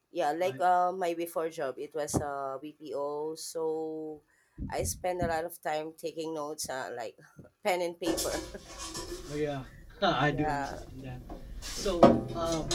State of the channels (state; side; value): identical; both; correlation 1.00